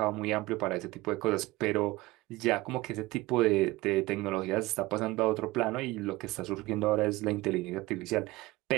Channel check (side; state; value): left; quieter; 19.9 dB